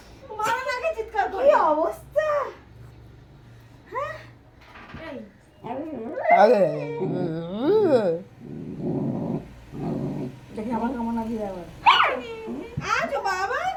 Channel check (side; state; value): both; identical; correlation 1.00